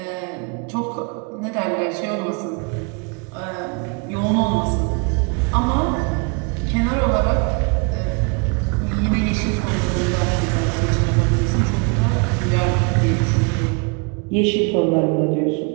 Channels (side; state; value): left; quieter; 33.6 dB